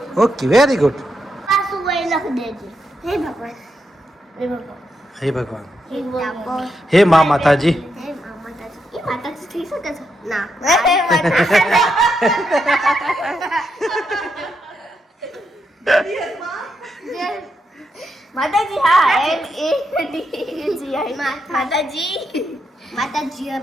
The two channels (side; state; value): both; normal; correlation 0.82